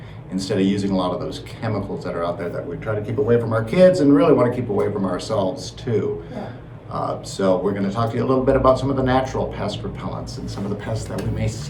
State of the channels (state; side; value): identical; both; correlation 1.00